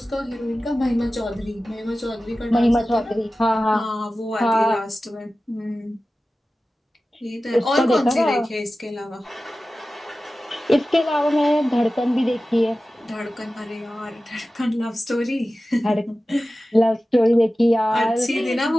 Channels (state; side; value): normal; both; correlation 0.95